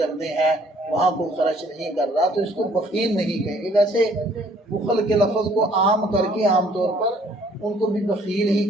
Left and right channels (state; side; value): normal; both; correlation 0.60